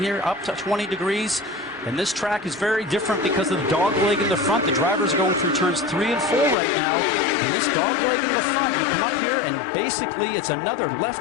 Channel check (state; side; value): drops out; right; at 6.6 s